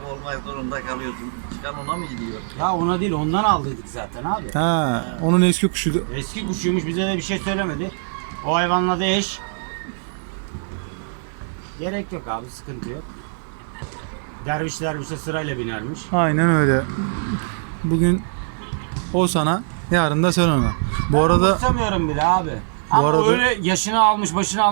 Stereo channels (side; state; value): left; silent; digital silence